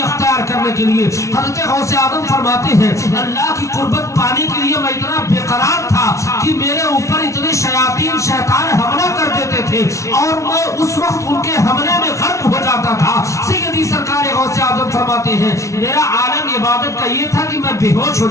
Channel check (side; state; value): right; late; 0.14 ms